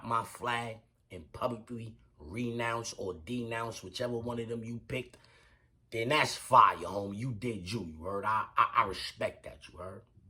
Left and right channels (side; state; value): both; identical; correlation 1.00